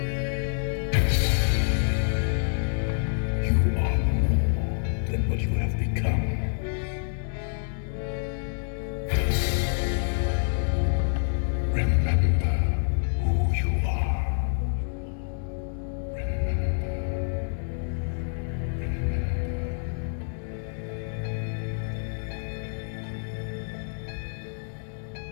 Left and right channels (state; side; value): silent; right; digital silence